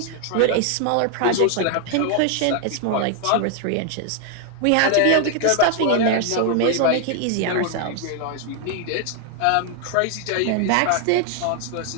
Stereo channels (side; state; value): both; different; correlation 0.00